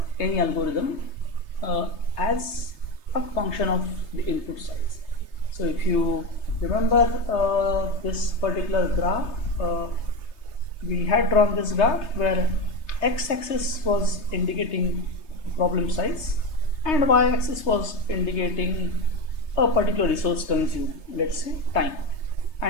any algorithm as a function of the input size. So if you remember this particular graph, we had drawn this graph where x-axis was indicating problem size and y-axis was indicating a particular resource consumed, let's say time.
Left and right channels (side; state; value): right; late; 3.3 ms